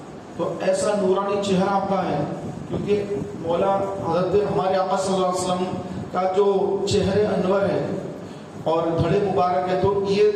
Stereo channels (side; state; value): both; identical; correlation 1.00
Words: تو ایسا نورانی چہرہ آپ کا ہے, کیونکہ مولا حضرت ہمارے آقا صلی اللہ علیہ وسلم کا جو چہرے انور ہے اور دھڑے مبارک ہے, تو یہ